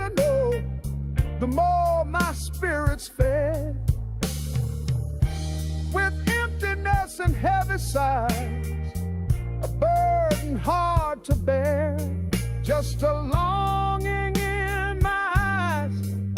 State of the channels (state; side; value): identical; both; correlation 1.00